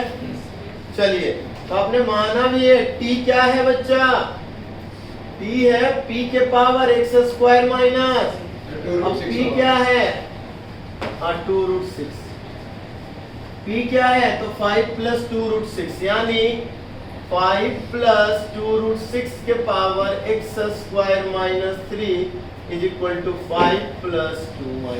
चलिए, तो आपने माना भी है t क्या है बच्चा? t है p के पावर x स्क्वायर माइनस, अब p क्या है? 2 रूट 6। p क्या है? तो 5 प्लस 2 रूट 6 यानी 5 प्लस 2 रूट 6 के power x square minus 3 is equal to 5 plus 2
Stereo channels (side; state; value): both; identical; correlation 1.00